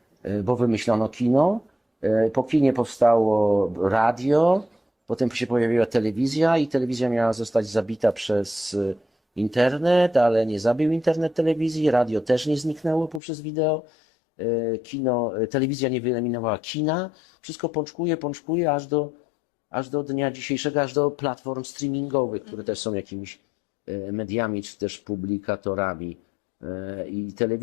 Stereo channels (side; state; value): right; drops out; at 13.2 s